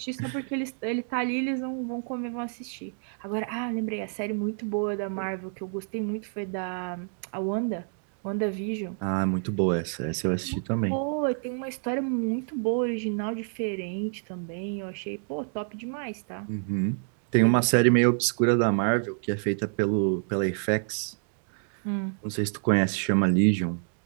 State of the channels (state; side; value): silent; left; 55 dB below the other